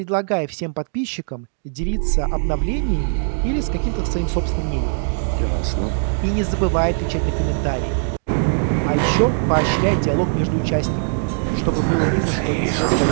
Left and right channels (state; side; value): silent; left; digital silence